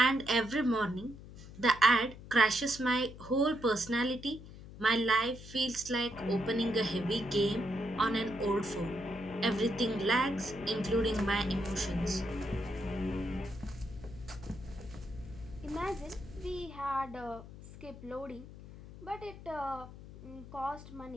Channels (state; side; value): noise; left; hum, 15 dB below the sound